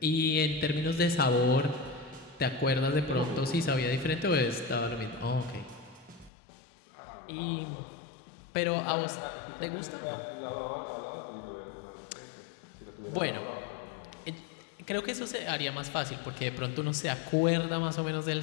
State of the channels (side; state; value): right; drops out; at 6.3 s